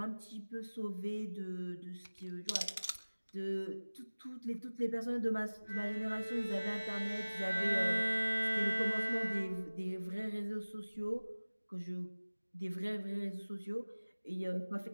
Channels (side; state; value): both; inverted; correlation -1.00